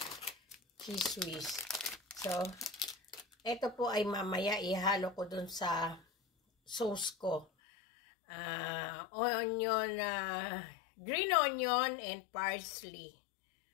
cheese whiz. So, ito po ay mamaya ihalo ko dun sa sauce ko. Onion, green onion and parsley.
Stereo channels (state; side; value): drops out; right; at 7.5 s